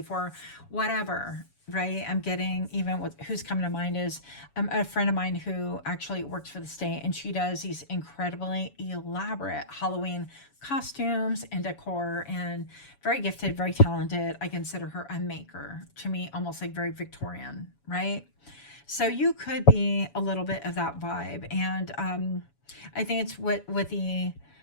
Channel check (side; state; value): right; late; 7.1 ms